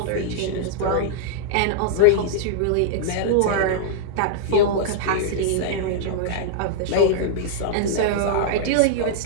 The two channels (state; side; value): different; both; correlation -0.02